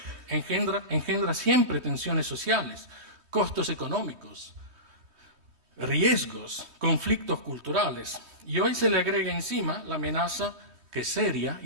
engendra siempre tensiones sociales, costos económicos, riesgos, conflictos culturales. Y hoy se le agrega encima la amenaza, que es seria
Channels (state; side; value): late; left; 3.2 ms